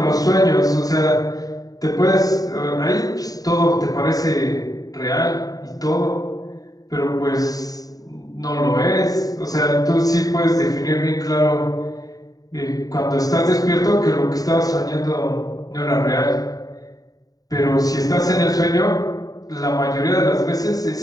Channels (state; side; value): late; right; 0.18 ms